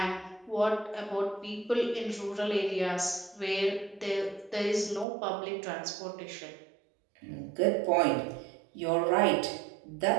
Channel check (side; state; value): left; drops out; at 5.1 s